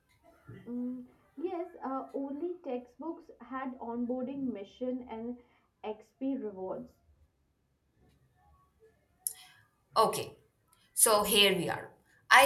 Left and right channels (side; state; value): both; identical; correlation 1.00